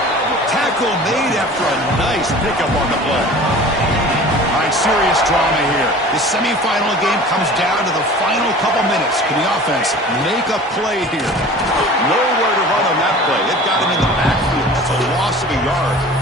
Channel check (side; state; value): both; normal; correlation 0.42